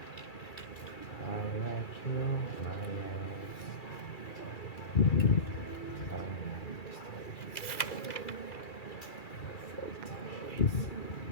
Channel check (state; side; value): late; right; 2.3 ms